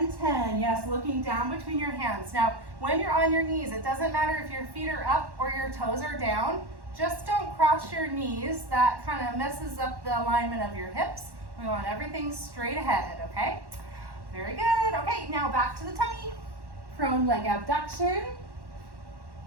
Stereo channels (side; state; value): left; late; 1.1 ms